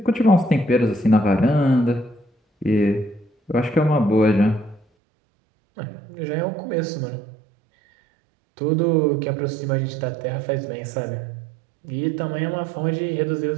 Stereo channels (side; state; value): left; drops out; at 4.8 s